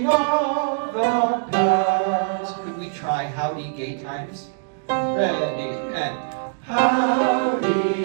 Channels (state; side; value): silent; left; digital silence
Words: of the past. Could we try howdy, gay times? Ready, and